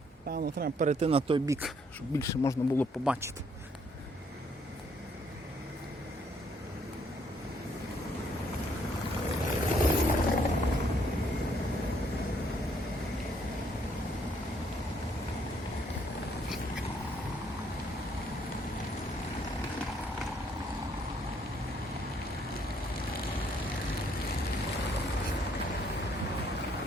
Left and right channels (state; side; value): normal; both; correlation 0.68